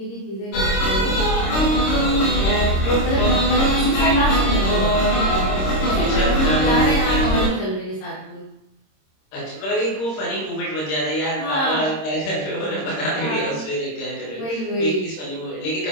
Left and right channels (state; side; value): late; right; 26 ms